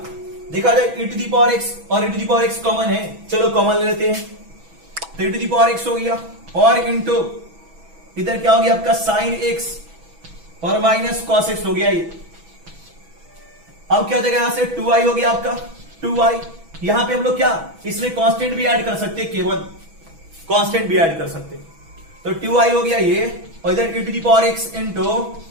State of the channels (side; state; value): left; late; 6.1 ms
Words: देखा जाए e to the power x और e to the power x common है, चलो कॉमन ले लेते हैं, तो e to the power x हो गया, और इंटू इधर क्या हो गया आपका साइन x और माइनस cos x हो गया ये। अब क्या हो जाएगा, यहां से 2i हो गया आपका, 2i, यहां पे हम लोग क्या इसमें कांस्टेंट भी ऐड कर सकते, केवल कांस्टेंट भी ऐड कर सकते, तो 2i हो गया ये, और इधर e to the power x into